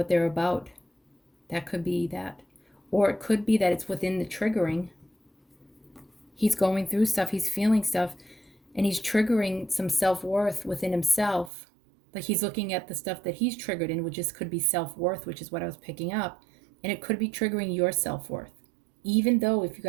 they're about. That could be that. Or it could be that it's within the triggering. He's going through stuff, he's feeling stuff, and he's triggering some self-worth within himself. Like he's looking at the stuff that he's triggered in, which could be self-worth, which is what I was picking up. And it could be triggering your self-worth, even though if you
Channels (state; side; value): drops out; left; at 11.5 s